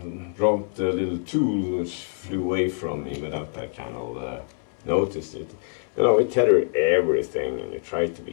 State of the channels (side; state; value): right; silent; 62 dB below the other